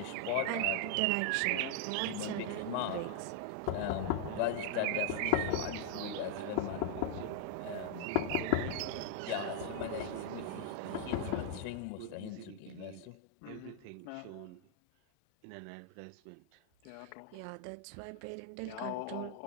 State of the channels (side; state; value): both; different; correlation -0.01